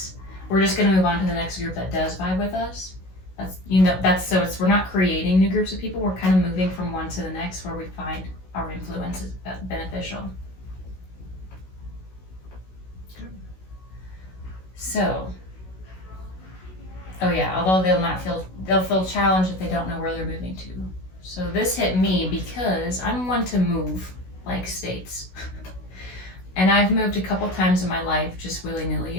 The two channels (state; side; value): late; right; 16 ms